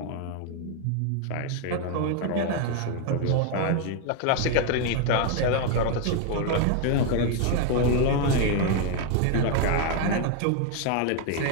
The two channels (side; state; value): both; different; correlation 0.01